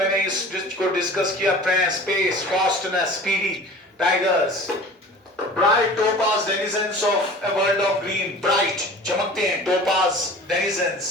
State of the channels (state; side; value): normal; both; correlation 0.41